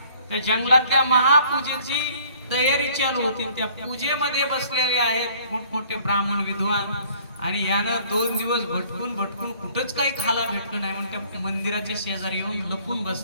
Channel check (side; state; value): both; inverted; correlation -0.57